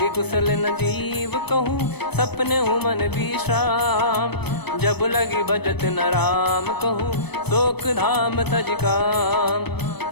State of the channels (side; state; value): right; late; 0.97 ms